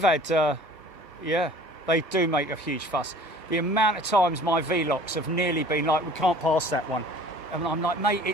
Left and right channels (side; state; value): both; normal; correlation 0.48